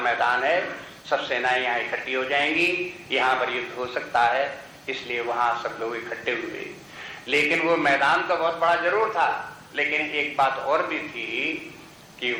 है, सब सेनाएं यहाँ इकट्ठी हो जाएंगी, यहाँ पर युद्ध हो सकता है, इसलिए वहां सब लोग इकट्ठे हुए। लेकिन वो मैदान तो बहुत बड़ा जरूर था, लेकिन एक बात और भी थी कि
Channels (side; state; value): both; identical; correlation 1.00